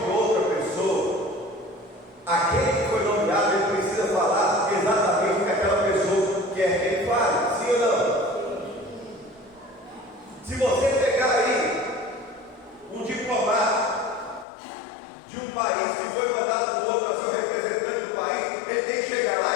de outra pessoa, aquele que foi nomeado, ele precisa falar exatamente o que aquela pessoa quer que ele fale, sim ou não? Se você pegar aí um diplomata de um país que foi mandado por outro a ser o representante do país, ele tem que chegar lá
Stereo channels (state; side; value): drops out; right; at 14.5 s